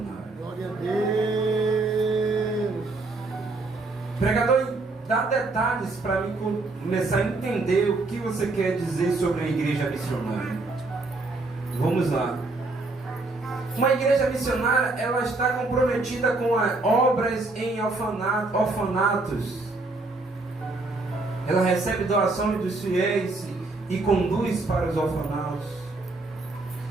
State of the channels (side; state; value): left; quieter; 3.3 dB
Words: Glória a Deus. Pregador, dá detalhes para mim começar a entender o que você quer dizer sobre a igreja missionária. Vamos lá. Uma igreja missionária, ela está comprometida com obras em orfanatos. Ela recebe doações dos fiéis e conduz para os orfanatos,